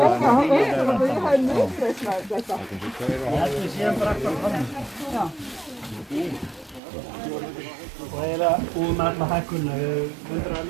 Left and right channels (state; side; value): drops out; left; at 6.8 s